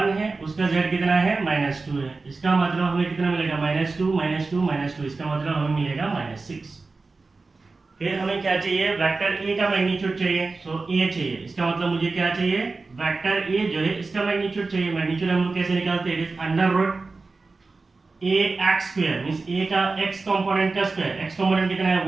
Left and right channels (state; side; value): quieter; left; 3.8 dB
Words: है. उसका z कितना है? -2 है. इसका मतलब हमें कितना मिलेगा? -2 -2 -2. इसका मतलब हमें मिलेगा -6. फिर हमें क्या चाहिए? वेक्टर a का मैग्नीट्यूड चाहिए. सो a चाहिए. इसका मतलब मुझे क्या चाहिए? वेक्टर a जो है इसका मैग्नीट्यूड चाहिए. मैग्नीट्यूड हम लोग कैसे निकालते हैं? It is under root a x square, means a का x कंपोनेंट का स्क्वायर. x कंपोनेंट कितना है?